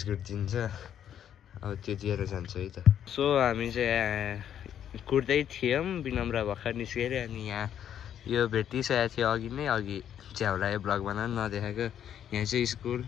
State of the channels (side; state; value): right; quieter; 9.8 dB